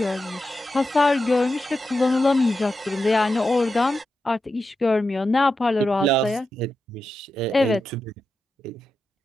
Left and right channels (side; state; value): both; normal; correlation 0.89